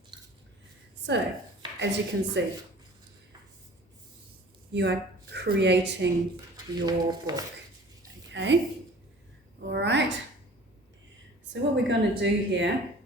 So, as you can see, you are creating your book, okay? All right. So what we're going to do here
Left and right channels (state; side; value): normal; both; correlation 0.46